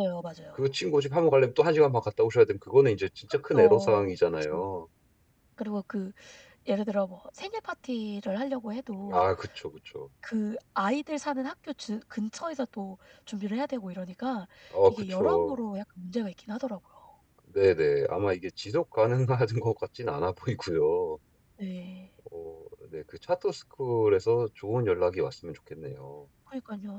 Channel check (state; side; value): identical; both; correlation 1.00